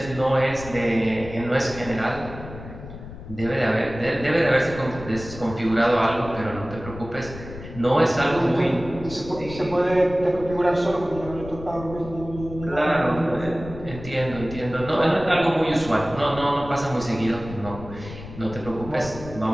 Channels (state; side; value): noise; left; rumble, 13 dB below the sound